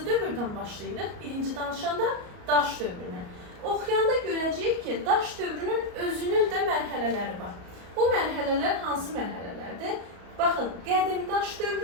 dövrdən başlayırıq? Birinci danışanda daş dövrünə. Oxuyanda görəcəyik ki, daş dövrünün özünün də mərhələləri var. Bu mərhələlər hansı mərhələlərdir? Baxın, qədim daş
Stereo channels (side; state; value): left; late; 34 ms